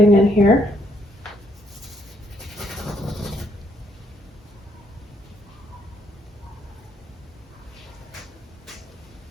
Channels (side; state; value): both; normal; correlation 0.71